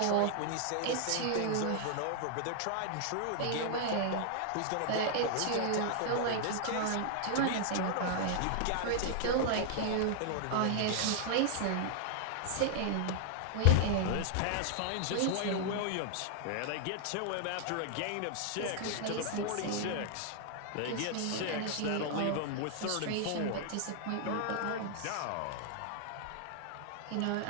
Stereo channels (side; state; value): both; different; correlation 0.00